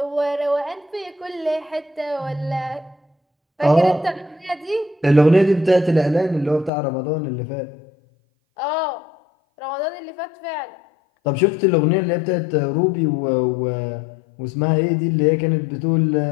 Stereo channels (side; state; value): right; drops out; at 6.7 s